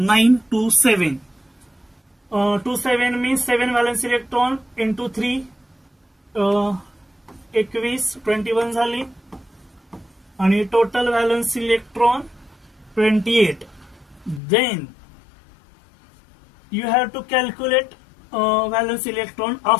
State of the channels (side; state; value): right; drops out; at 14.4 s